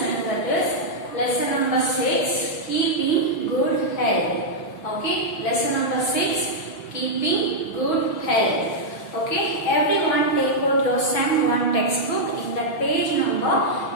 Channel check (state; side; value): late; right; 6.2 ms